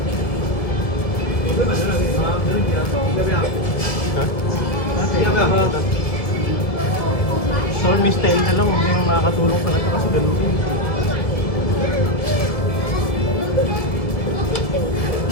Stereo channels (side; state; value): right; late; 1.7 ms